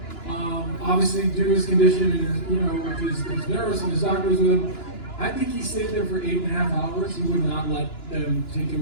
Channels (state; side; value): late; right; 2.9 ms